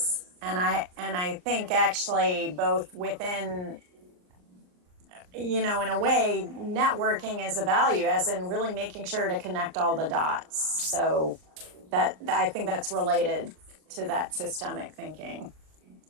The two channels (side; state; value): left; late; 39 ms